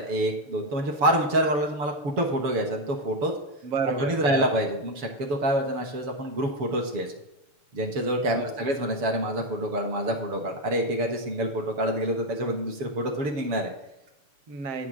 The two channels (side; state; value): left; late; 7.1 ms